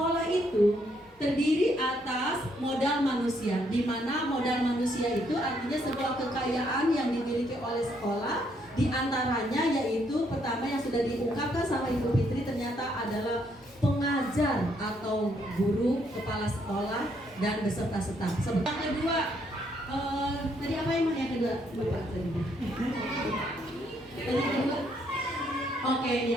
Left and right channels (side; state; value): both; normal; correlation 0.72